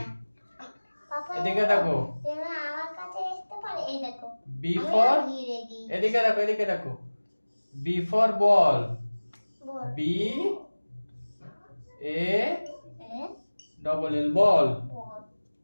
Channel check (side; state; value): both; inverted; correlation -1.00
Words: এদিকে দেখো, বি ফর, এদিকে দেখো, এদিকে দেখো, B for ball, B A double L, ball.